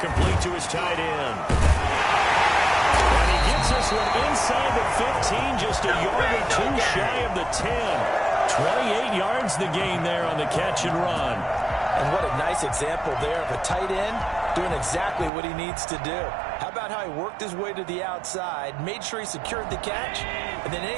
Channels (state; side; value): drops out; left; at 15.3 s